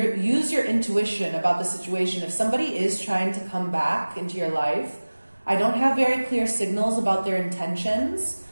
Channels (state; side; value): inverted; both; correlation -1.00